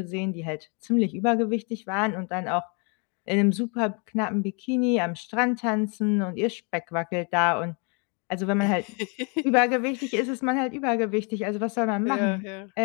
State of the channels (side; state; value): right; quieter; 35.1 dB